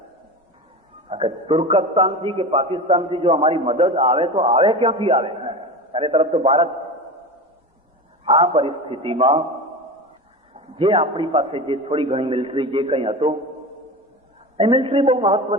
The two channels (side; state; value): both; normal; correlation 0.28